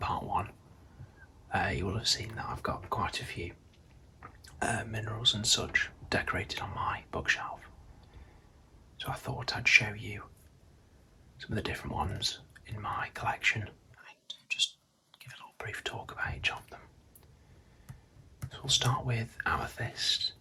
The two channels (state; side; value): identical; both; correlation 1.00